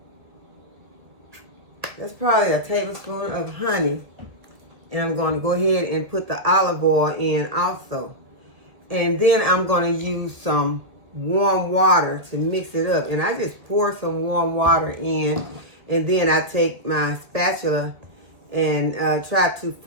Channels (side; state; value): left; late; 1.6 ms